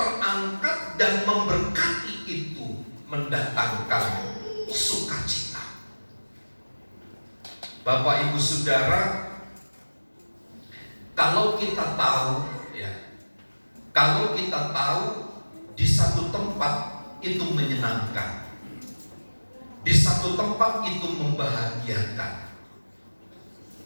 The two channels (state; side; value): inverted; both; correlation -1.00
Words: dan memberkati itu mendatangkan sukacita. Bapak Ibu Saudara, kalau kita tahu di satu tempat itu menyenangkan, di satu tempat itu membahagiakan,